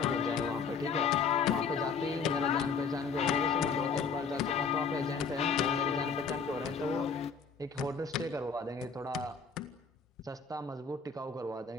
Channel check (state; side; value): quieter; right; 5.5 dB